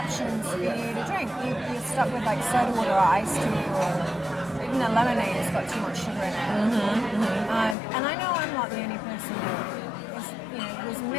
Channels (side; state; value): right; drops out; at 7.8 s